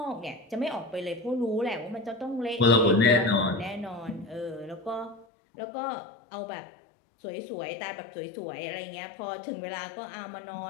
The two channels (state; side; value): drops out; right; at 5.2 s